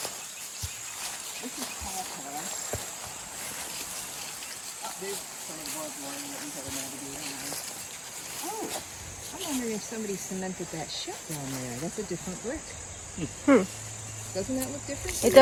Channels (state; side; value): identical; both; correlation 1.00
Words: This is Paul Pass. Oh, there's some of the barbed wire that we haven't navigated. Oh, I'm wondering if somebody cemented that shut down there. That's a different brick. Doesn't that look different? It